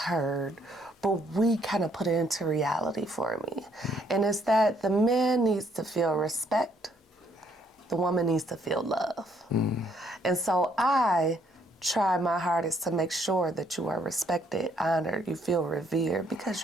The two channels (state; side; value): normal; both; correlation 0.68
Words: but we kind of put it into reality for me. And it's that the man needs to feel respect, the woman needs to feel love. And so I try my hardest to make sure that you are respected, honored, you feel revered, because